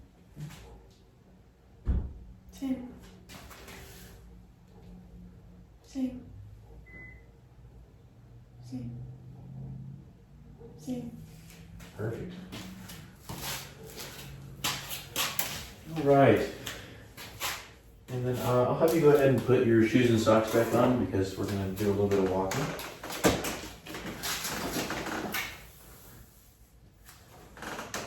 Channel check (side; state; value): both; identical; correlation 1.00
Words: Same. Same. Same. Same. Perfect. All right. And then I'll have you go ahead and put your shoes and socks back on because we're going to do a little bit of walking.